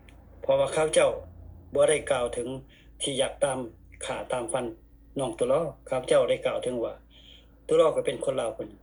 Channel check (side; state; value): both; identical; correlation 1.00